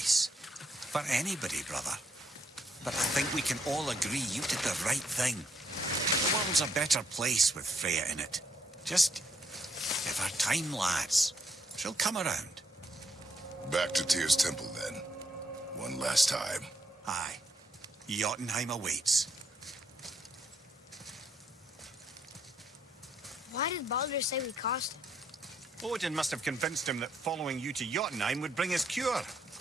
For anybody, brother. But I think we can all agree you did the right thing. The world's a better place with Freya in it. Just give her time, lads. She'll come around. Back to Tyr's temple, then. One last time. Aye. Jotunheim awaits. Why did Baldur say we cost him? Odin must have convinced him that following you to Jotunheim would bring his cure.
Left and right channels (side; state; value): both; normal; correlation 0.74